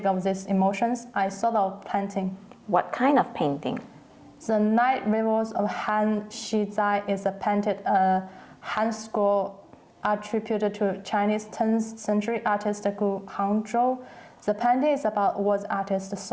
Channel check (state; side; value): identical; both; correlation 1.00